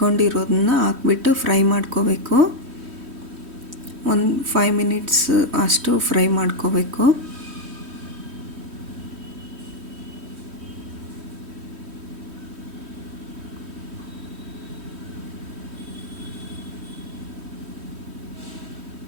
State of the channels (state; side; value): late; left; 3.1 ms